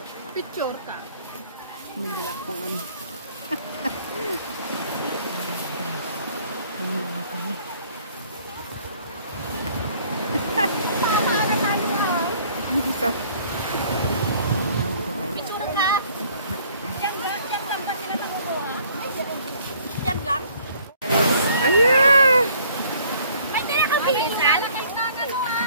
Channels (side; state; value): both; inverted; correlation -0.58